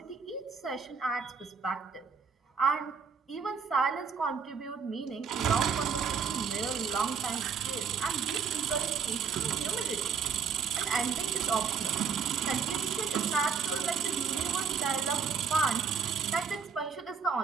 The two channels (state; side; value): quieter; left; 6.0 dB